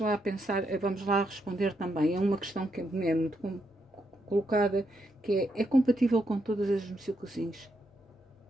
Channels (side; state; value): both; normal; correlation 0.80